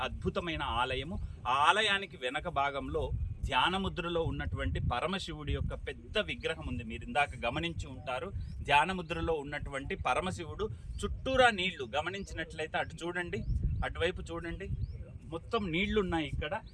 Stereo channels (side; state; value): both; identical; correlation 1.00